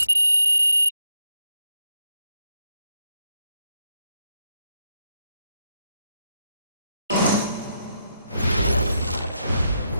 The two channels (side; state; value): both; inverted; correlation -0.82